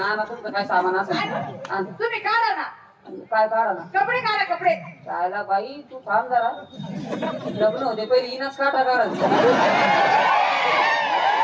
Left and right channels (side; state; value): both; identical; correlation 1.00